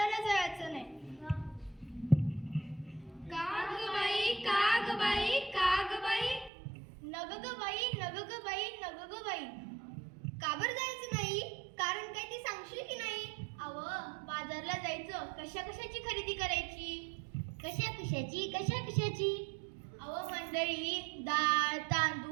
जायचं नाही. का ग बाई, का ग बाई, का ग बाई? नग ग बाई, नग ग बाई, नग ग बाई. का बरं जायचं नाही? कारण काय ते सांगशील की नाही? अहो, बाजारला जायचं, कशा कशाची खरेदी करायची? कशा कशाची, कशा कशाची? अहो मंडळी, डाळ,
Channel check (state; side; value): drops out; left; at 6.5 s